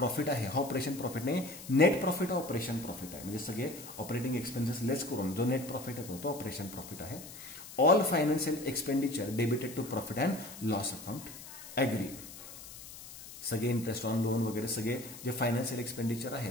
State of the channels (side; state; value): left; noise; hiss, 14 dB below the sound